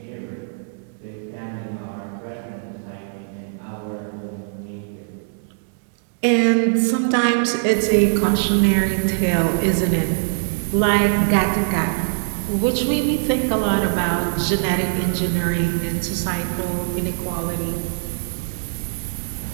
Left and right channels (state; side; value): silent; left; digital silence